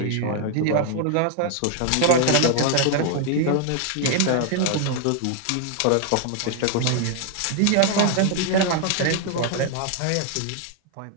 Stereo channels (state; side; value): different; both; correlation 0.00